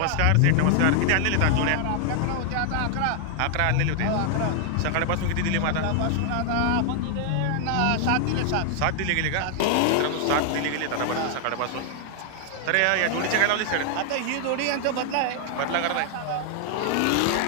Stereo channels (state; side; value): different; both; correlation 0.00